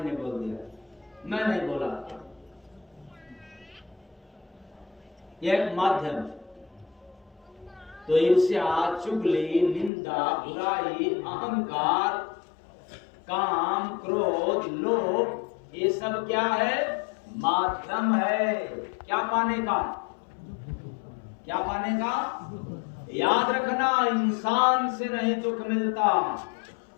ने बोल दिया, मैं नहीं बोला। यह एक माध्यम। तो ईर्ष्या, चुगली, निंदा, बुराई, अहंकार, काम, क्रोध, लोभ, ये सब क्या है? माध्यम है। क्या पाने का? क्या पाने का? याद रखना, इंसान से नहीं दुख मिलता,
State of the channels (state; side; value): drops out; right; at 9.9 s